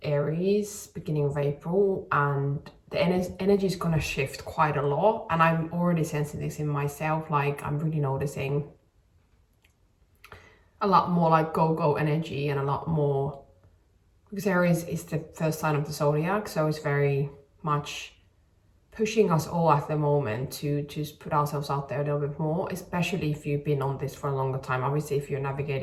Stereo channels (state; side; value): identical; both; correlation 1.00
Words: Aries beginning of April, and the energy is going to shift quite a lot, and I'm already sensing this in myself. Like, I'm really noticing a lot more like go energy, and a lot more, because Aries is the first sign of the zodiac, so it's very much pushing us all at the moment to just put ourselves out there a little bit more, especially if you've been on this for a longer time. Obviously, if you're